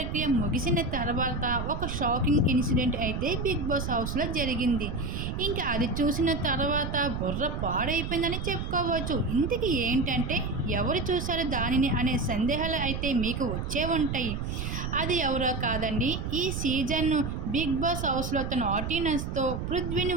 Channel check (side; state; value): right; noise; rumble, 4 dB below the sound